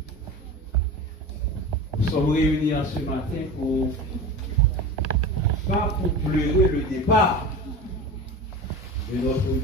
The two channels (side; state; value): both; normal; correlation 0.31